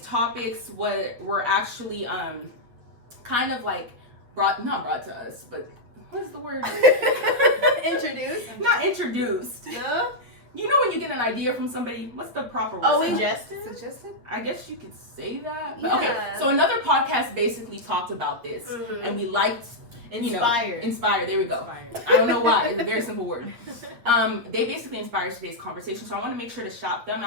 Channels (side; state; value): left; late; 8.6 ms